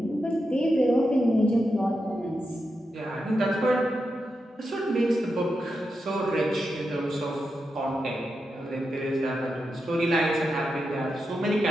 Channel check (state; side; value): normal; both; correlation 0.88